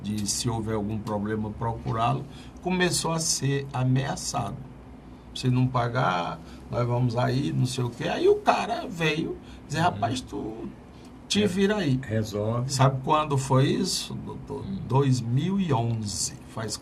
de se houver algum problema procurá-lo, começou a ser ameaçado. Se não pagar, nós vamos aí, não sei o quê. Aí o cara veio dizer, rapaz, tu te vira aí. Resolve. Sabe quando foi isso, doutor? 2011. Faz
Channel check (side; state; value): both; identical; correlation 1.00